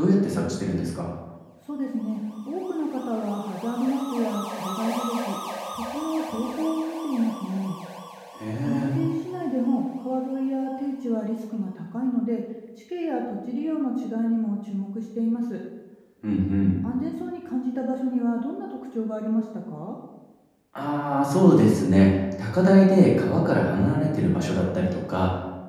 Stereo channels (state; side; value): identical; both; correlation 1.00